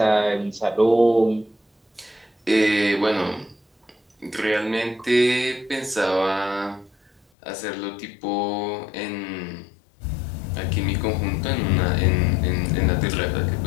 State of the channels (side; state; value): right; drops out; at 7.2 s